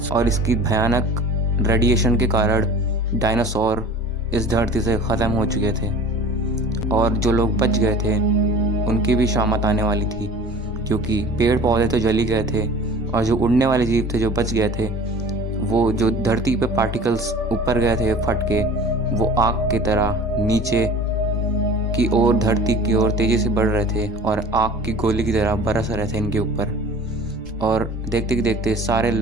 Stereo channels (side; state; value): both; normal; correlation 0.42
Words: और इसकी भयानक रेडिएशन के कारण डायनासोर इस धरती से ख़त्म हो चुके थे। और जो लोग बच गए थे उनकी भी शामत आने वाली थी, क्योंकि पेड़ पौधे तो जल ही गए थे और जो उड़ने वाले जीव थे जो बच गए थे, वो जो धरती पे पार्टिकल्स ऊपर गए थे फट के, वो आग की तरह नीचे की ओर धरती की ओर तेज़ी से बढ़ रहे थे और आग की गोली की तरह बरस रहे थे इनके ऊपर। और देखते देखते सारे